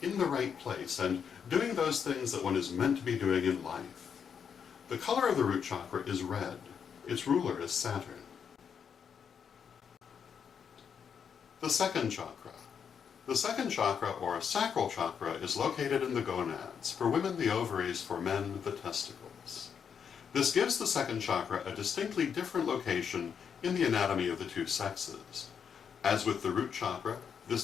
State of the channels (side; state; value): right; quieter; 7.2 dB